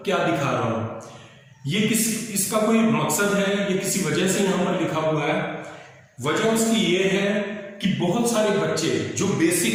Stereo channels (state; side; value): identical; both; correlation 1.00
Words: क्या दिखा रहा हूँ, ये इसका कोई मकसद है, ये किसी वजह से यहाँ पर लिखा हुआ है। वजह उसकी ये है कि बहुत सारे बच्चे जो